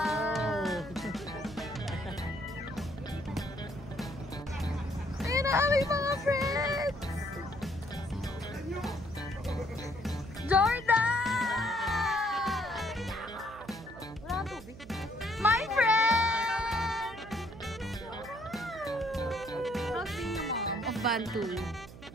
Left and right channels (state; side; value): noise; right; hum, 16 dB below the sound